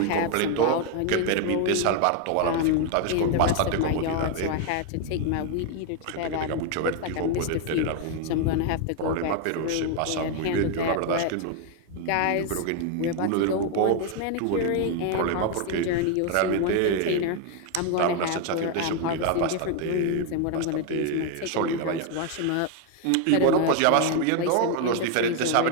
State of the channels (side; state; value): both; different; correlation 0.01